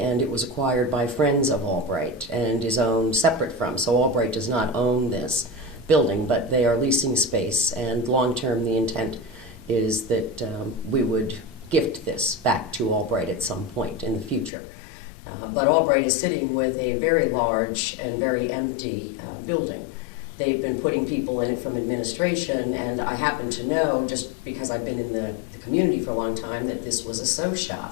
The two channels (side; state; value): right; drops out; at 14.5 s